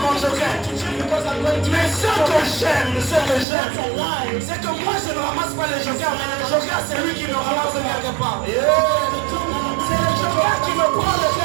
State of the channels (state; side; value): drops out; left; at 3.5 s